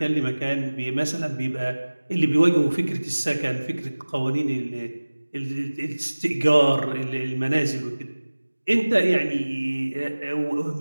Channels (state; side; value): inverted; both; correlation -1.00